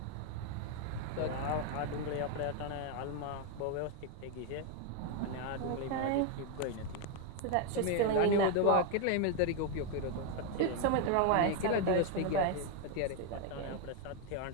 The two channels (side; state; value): both; different; correlation 0.01